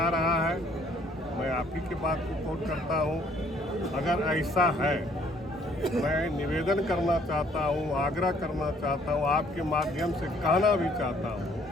रहा है, मैं आप ही की बात को कोट करता हूँ। अगर ऐसा है, मैं निवेदन करना चाहता हूँ, आग्रह करना चाहता हूँ, आपके माध्यम से कहना भी चाहता हूँ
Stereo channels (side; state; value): both; normal; correlation 0.62